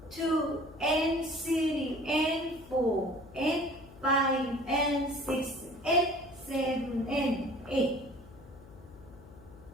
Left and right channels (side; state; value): left; noise; hum, 20 dB below the sound